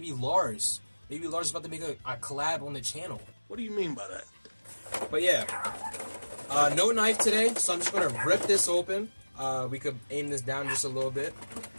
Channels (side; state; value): both; inverted; correlation -1.00